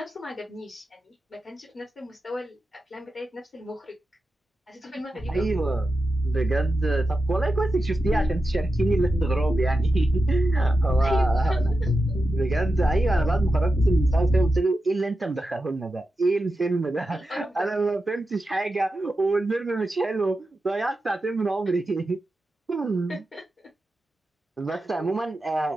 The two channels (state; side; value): normal; both; correlation 0.90